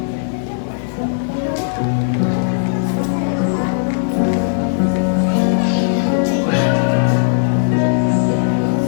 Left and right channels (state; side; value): silent; right; 68 dB below the other